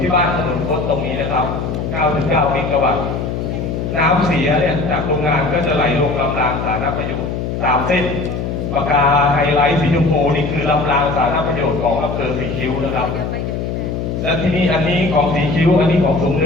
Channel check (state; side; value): noise; left; hum, 3 dB below the sound